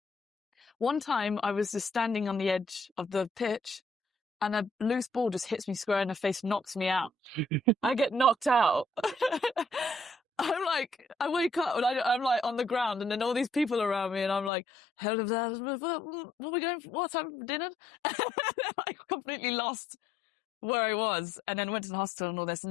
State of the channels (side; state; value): right; drops out; at 14.5 s